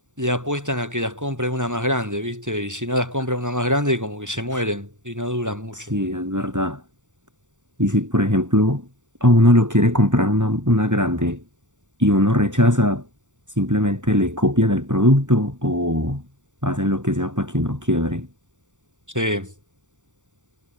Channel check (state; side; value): late; left; 0.86 ms